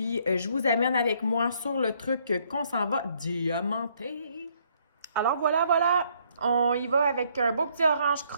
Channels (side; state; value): both; inverted; correlation -0.67